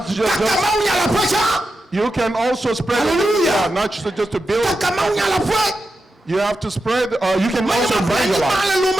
just you can also spread it, not just to build. You have to spread, you can also evangelize.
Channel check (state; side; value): normal; both; correlation 0.89